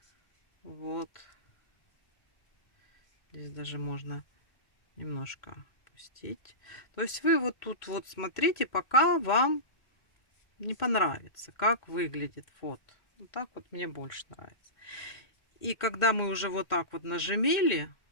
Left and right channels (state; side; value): late; right; 2.1 ms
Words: Вот. Здесь даже можно немножко опустить. То есть вы вот тут вот смотрите, пока вам не понравится, как выглядит вот. Вот так вот мне больше нравится. И когда мы уже вот так вот нажимили,